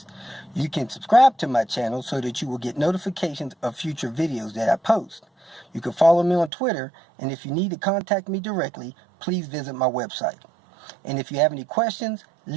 You can subscribe to my channel so that you will get notifications of future videos that I post. You can follow me on Twitter, and if you need to contact me directly, please visit my website. And if you have any questions,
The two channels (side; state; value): left; drops out; at 6.5 s